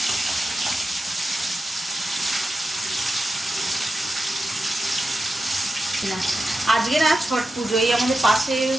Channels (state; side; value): normal; both; correlation 0.91